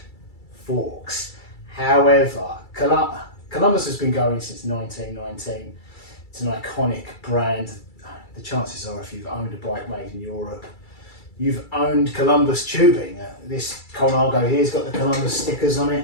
forks. However, Columbus has been going since 1919. It's an iconic brand. The chances are, if you've owned a bike made in Europe, you've owned Columbus tubing. This Colnago here's got the Columbus stickers on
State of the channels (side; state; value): right; late; 2.3 ms